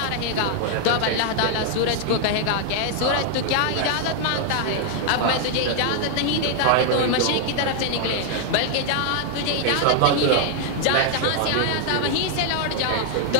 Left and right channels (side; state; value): both; different; correlation 0.00